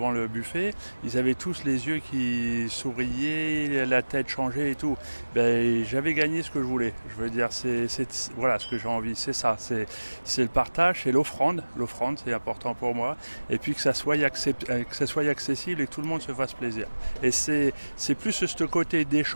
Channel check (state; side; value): inverted; both; correlation -1.00